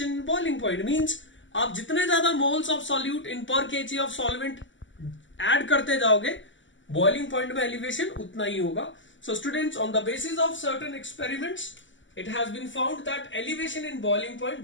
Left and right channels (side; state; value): right; late; 0.55 ms